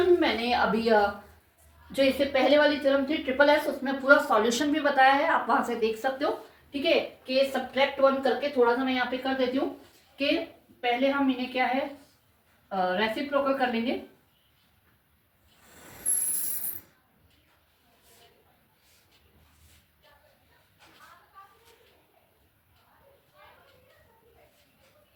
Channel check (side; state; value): both; identical; correlation 1.00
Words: मैंने अभी जो इससे पहले वाली थ्योरम थी ट्रिपल एस, उसमें पूरा सॉल्यूशन भी बताया है, आप वहां से देख सकते हो। ठीक है, कि सब्ट्रैक्ट 1 करके थोड़ा सा मैं यहाँ पे कर देती हूँ कि पहले हम इन्हें क्या है रेसिप्रोकल कर लेंगे।